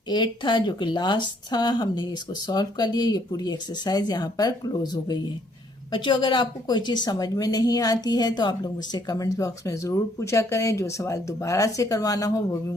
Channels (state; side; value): normal; both; correlation 0.67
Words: 8 था, जो कि लास्ट था, हमने इसको सॉल्व कर लिया। ये पूरी एक्सरसाइज यहाँ पर क्लोज हो गई है। बच्चों, अगर आपको कोई चीज़ समझ में नहीं आती है तो आप लोग मुझसे कमेंट बॉक्स में ज़रूर पूछा करें। जो सवाल दोबारा से करवाना हो वो भी